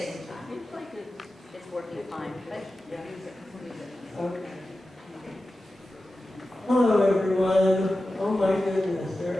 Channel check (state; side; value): normal; both; correlation 0.93